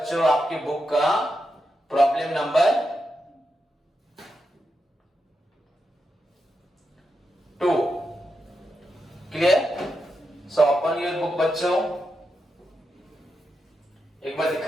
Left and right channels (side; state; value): both; normal; correlation 0.86